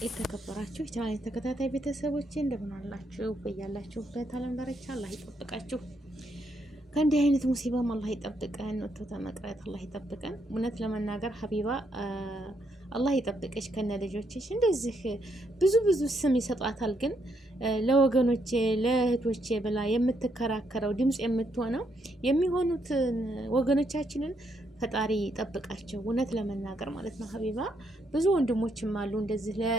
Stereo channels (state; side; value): normal; both; correlation 0.76